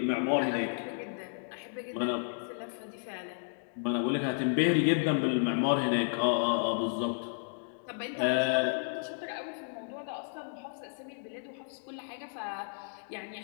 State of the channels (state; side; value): silent; right; digital silence